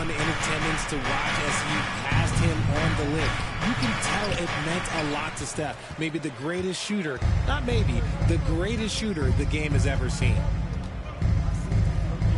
in attendance to watch as he passed him on the lip. You can tell it meant a lot to Steph. Maybe the greatest shooter, not maybe, the greatest shooter the game has ever seen.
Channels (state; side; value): identical; both; correlation 1.00